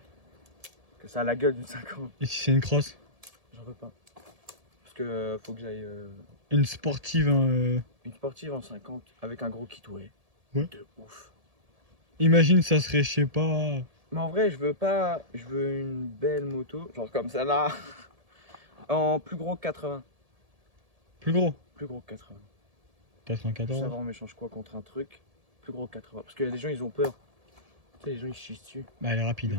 Que ça a la gueule d'une 50. Et si c'est une crosse? J'en veux pas. Parce que faut que j'aille Une sportive. une sportive en 50 avec un gros kit ouais. Ouais. De ouf. Imagine, ça serait, je sais pas. Mais en vrai, je veux pas. Je veux une belle moto, genre comme ça là. En plus gros que 80. Plus gros. Plus gros que 80. 94. Ça va, on m'échange quoi contre un truc plus gros que 80. Parce que les gens ils ont peur. Tu sais, les gens ils chient dessus. Bah, elle est rapide. Du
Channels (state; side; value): late; left; 1.7 ms